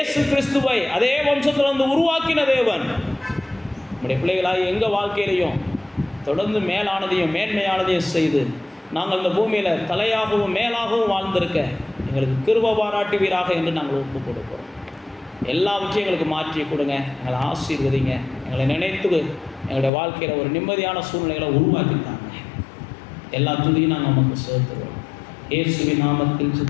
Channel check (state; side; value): drops out; right; at 19.9 s